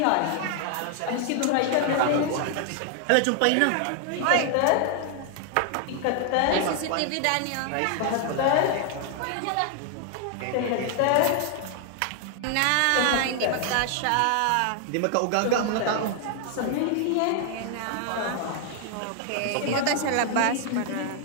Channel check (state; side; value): different; both; correlation 0.00